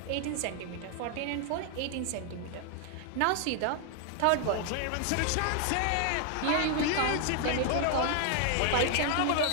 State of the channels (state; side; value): different; both; correlation 0.00